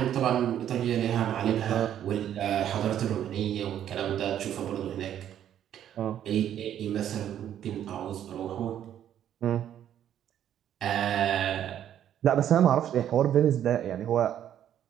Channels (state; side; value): quieter; left; 10.5 dB